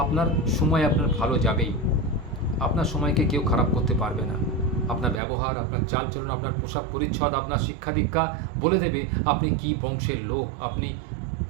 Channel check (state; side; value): drops out; left; at 5.2 s